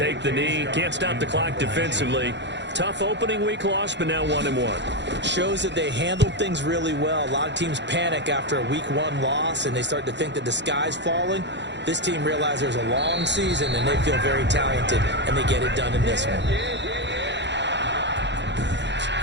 the knee. Can't stop the clock defensively. Tough opening week loss, but now 1-1. Shows that they handled things really well. A lot of teams panic after a week 1 loss, and they start to think that the sky's falling. This team realizes there's a long season, and they feel very talented, and they get it done in this one.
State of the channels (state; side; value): late; left; 0.52 ms